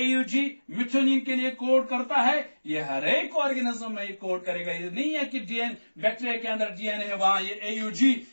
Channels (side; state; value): both; inverted; correlation -1.00